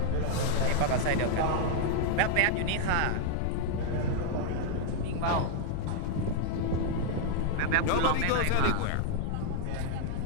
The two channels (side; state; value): both; different; correlation -0.01